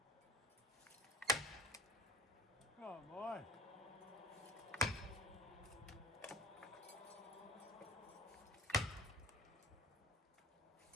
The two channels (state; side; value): normal; both; correlation 0.42